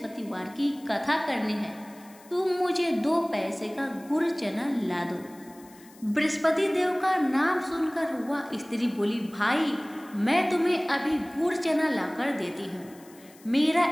की कथा करनी है, तुम मुझे 2 पैसे का गुड़ चना ला दो। बृहस्पति देव का नाम सुनकर वह स्त्री बोली, भाई मैं तुम्हें अभी गुड़ चना लाकर देती हूँ। मेरा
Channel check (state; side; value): noise; left; hiss, 25 dB below the sound